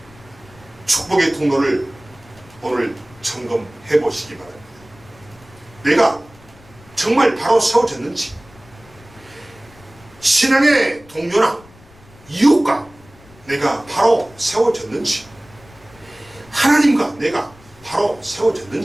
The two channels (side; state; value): left; noise; rumble, 25 dB below the sound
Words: 축복의 통로를 오늘 점검해 보시기 바랍니다. 내가 정말 바로 세워졌는지, 신앙의 동료나 이웃과 내가 바로 세워졌는지, 하나님과 내가 바로